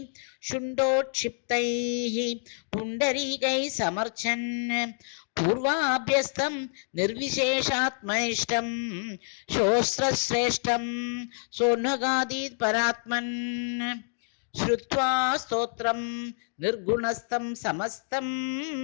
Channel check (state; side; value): silent; right; digital silence